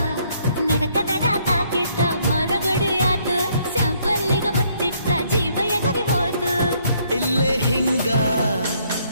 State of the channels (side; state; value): both; inverted; correlation -0.68